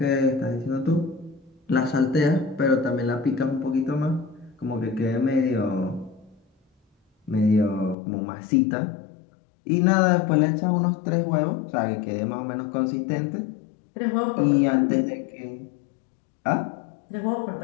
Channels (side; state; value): right; drops out; at 8.0 s